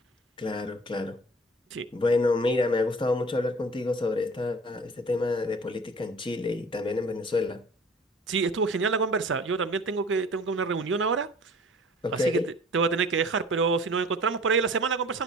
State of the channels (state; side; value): normal; both; correlation 0.45